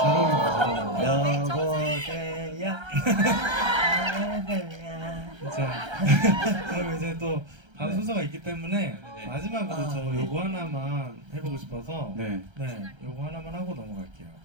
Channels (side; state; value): left; late; 1.3 ms